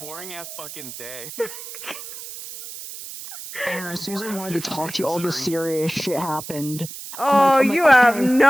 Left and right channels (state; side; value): noise; right; hiss, 11 dB below the sound